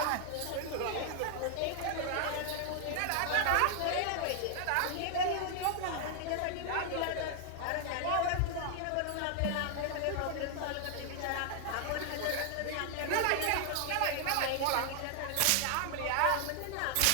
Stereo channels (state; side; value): different; both; correlation 0.00